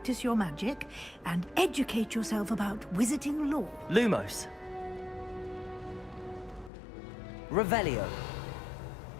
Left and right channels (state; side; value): drops out; right; at 6.7 s